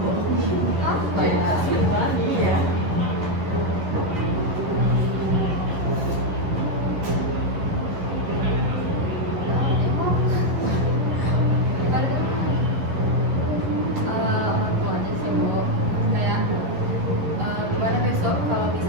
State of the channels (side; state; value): left; late; 11 ms